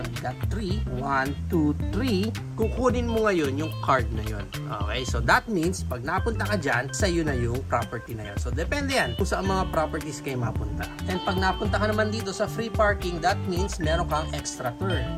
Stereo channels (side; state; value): both; identical; correlation 1.00